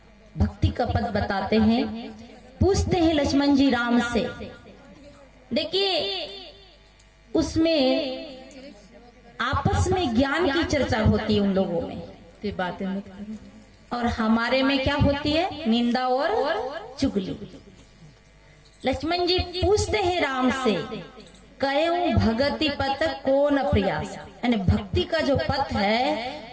भक्ति का पद बताते हैं, पूछते हैं लक्ष्मण जी राम से। देखिए उसमें आपस में ज्ञान की चर्चा होती है उन लोगों में, ये बातें मत करो। और हमारे में क्या होती है? निंदा और चुगली। लक्ष्मण जी पूछते हैं राम से, कहो भगति पथ को न प्रयास, यानी भक्ति का जो पथ है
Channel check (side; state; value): both; identical; correlation 1.00